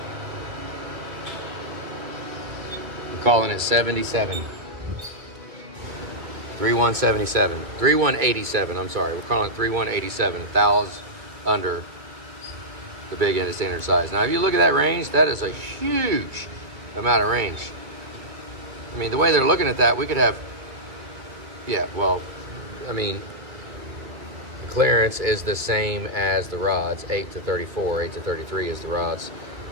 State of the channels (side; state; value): left; late; 2.2 ms